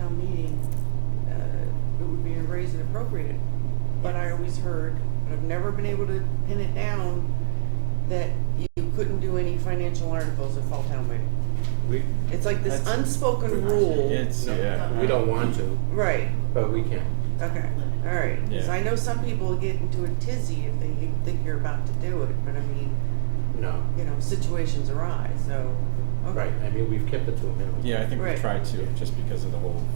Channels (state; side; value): silent; left; 63 dB below the other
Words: meeting, it would be a raise and appropriate. But I always heard, and I've never been able to pin it down, that you couldn't do any financial articles at fall town meeting. We, It's like this That's- unspoken rule. It's, no, yeah. we don't want to, Right, but we can. okay, all right. 'Cause Yeah. I know some people get into a tizzy if they think you're about to do it, but I mean, No. situations arise, so. okay. Right. I mean, we've kept it to a minimum. Yeah, I think we Right. tried to, just because of the whole